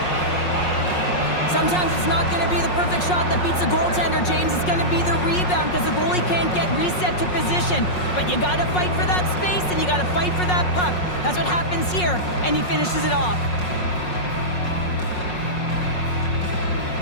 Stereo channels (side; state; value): right; late; 5.5 ms